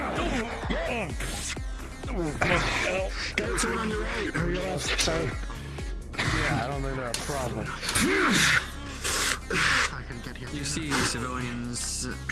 There's one on your right or your left. Sorry. Yeah, I don't think they're a problem. You see civilians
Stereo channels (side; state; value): both; identical; correlation 1.00